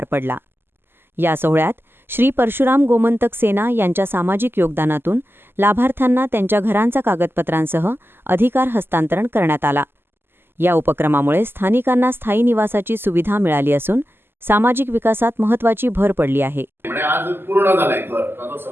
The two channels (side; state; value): left; late; 0.11 ms